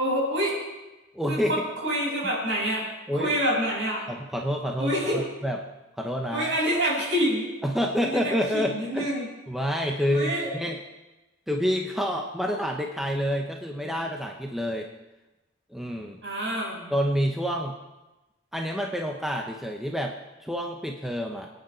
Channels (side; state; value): both; normal; correlation 0.51